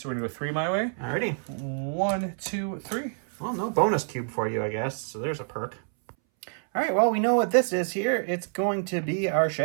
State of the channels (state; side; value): silent; left; 60 dB below the other